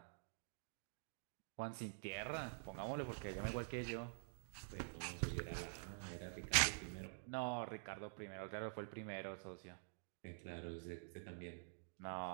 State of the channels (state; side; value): silent; left; digital silence